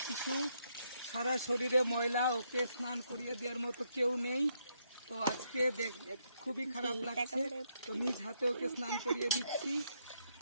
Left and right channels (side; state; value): both; inverted; correlation -0.76